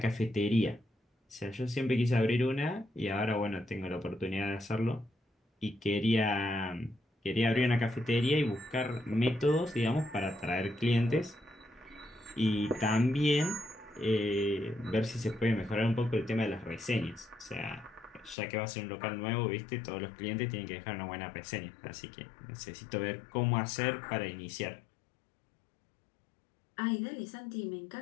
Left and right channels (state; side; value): drops out; right; at 18.4 s